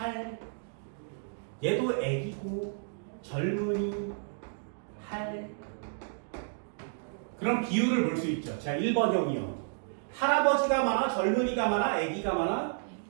얘도 애기고 젊은이, 할. 그럼 비율을 볼 수 있죠. 자, 1번형이요. 할아버지가 많아, 젊은이가 많아, 애기가 많아?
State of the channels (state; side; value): silent; left; digital silence